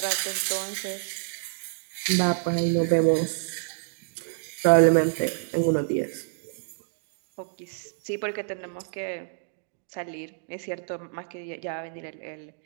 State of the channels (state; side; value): silent; left; digital silence